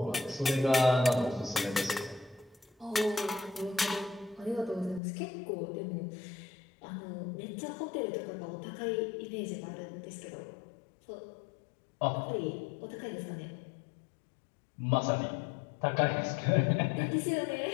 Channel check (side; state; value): right; drops out; at 5.0 s